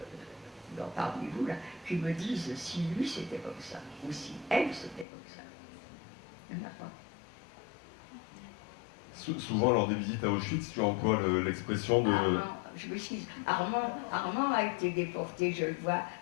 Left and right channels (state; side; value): drops out; right; at 5.1 s